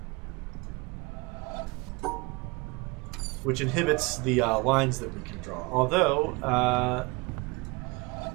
which inhibits the lines that we can draw. Although,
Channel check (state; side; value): quieter; left; 26.5 dB